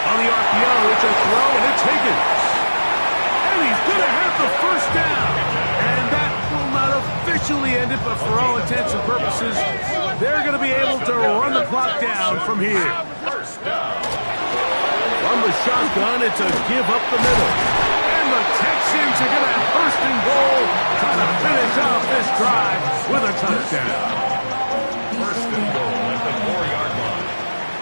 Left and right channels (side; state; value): both; inverted; correlation -1.00